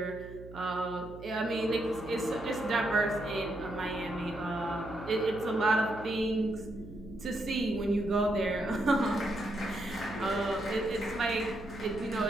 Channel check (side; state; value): right; noise; hum, 16 dB below the sound